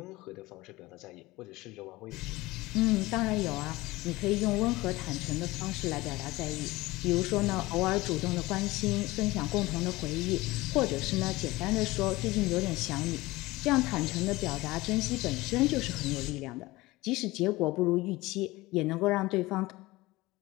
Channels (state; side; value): quieter; right; 20.0 dB